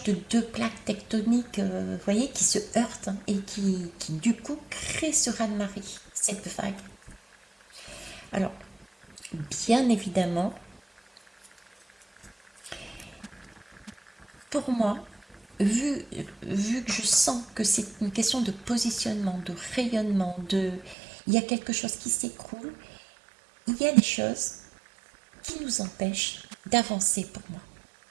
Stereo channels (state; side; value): drops out; left; at 21.0 s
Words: de deux plaques tectoniques, vous voyez, qui se heurtent et qui du coup créent ce raz-de-marée, cette vague. Alors, bien évidemment, pour moi, vu, vu que je sens que c'est une question de positionnement, de rayonnement, il y a quelque chose qui s'écroule, il y a des choses qui nous empêchent d'avancer pour moi.